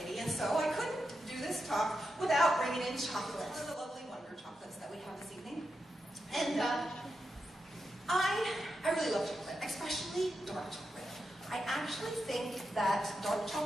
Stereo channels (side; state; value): both; normal; correlation 0.87